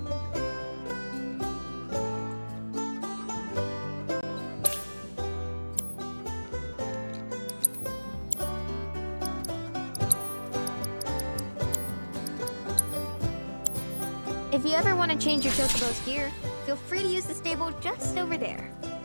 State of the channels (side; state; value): both; inverted; correlation -1.00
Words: If you ever want to change your chocobo's gear, feel free to use the stable just over there.